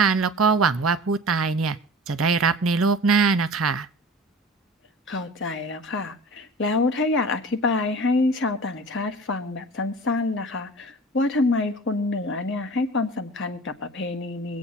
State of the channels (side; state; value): both; normal; correlation 0.39